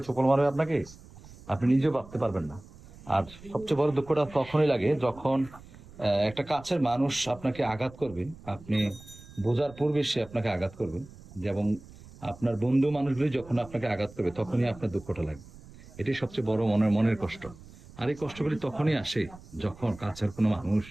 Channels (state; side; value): noise; right; rumble, 20 dB below the sound